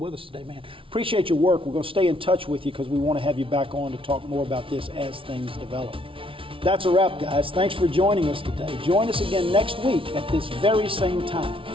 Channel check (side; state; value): left; late; 0.25 ms